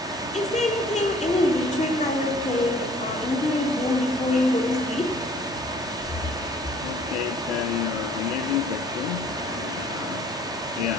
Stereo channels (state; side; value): normal; both; correlation 0.55